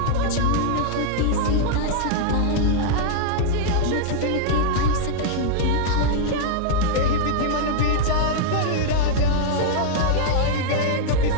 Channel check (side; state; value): both; different; correlation -0.01